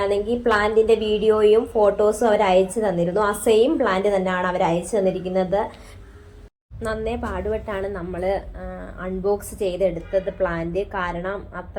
പ്ലാന്റിന്റെ വീഡിയോയും ഫോട്ടോസും അവർ അയച്ചു തന്നിരുന്നു. ആ സെയിം പ്ലാന്റ് തന്നെയാണ് അവർ അയച്ചു തന്നിരിക്കുന്നത്. നന്നേ പാടുപെട്ടാണ് നമ്മൾ അൺബോക്സ് ചെയ്തെടുത്തത് പ്ലാന്റ്. കാരണം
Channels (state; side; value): identical; both; correlation 1.00